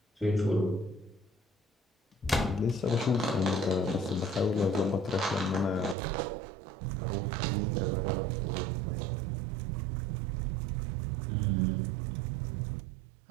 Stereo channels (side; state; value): left; drops out; at 6.0 s